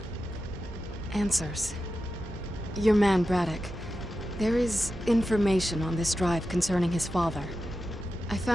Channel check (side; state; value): both; normal; correlation 0.91